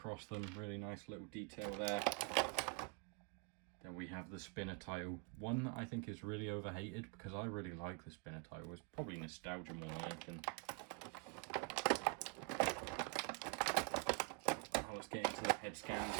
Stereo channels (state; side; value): quieter; left; 35.0 dB